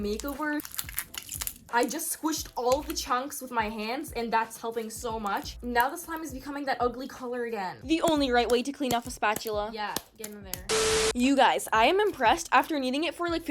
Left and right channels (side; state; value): both; identical; correlation 1.00